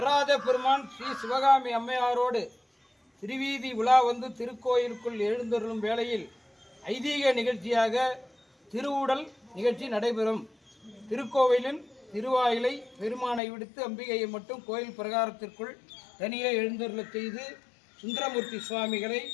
பெருமான் ஸ்ரீ சிவகாமி அம்மையாரோடு திருவீதி உலா வந்து திருக்கோயிலுக்குள் எழுந்தருளும் வேளையில் ஐதீக நிகழ்ச்சியாக திருவுடல் நிகழ்ச்சி நடைபெறும். திருக்கோவிலின் திருவாயிலை பெருமானை விடுத்து அம்பிகையை மட்டும் கோயில் பிரகாரத்திற்குள் தனியே எழுந்தருளச் செய்து சுந்தரமூர்த்தி சுவாமிகளை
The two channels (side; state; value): right; drops out; at 13.4 s